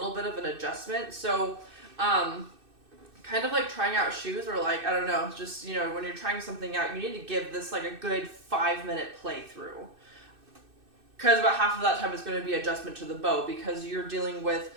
bit of an adjustment. So, kind of like trying out shoes, or like, I don't know, just, when you're trying something out, you need to give this like a good 5-minute playthrough. Because about half of that time is going to be adjustment to the bow, because you're dealing with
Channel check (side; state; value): left; late; 2.6 ms